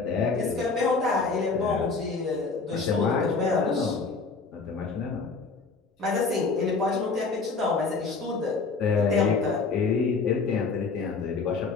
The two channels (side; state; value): right; quieter; 4.4 dB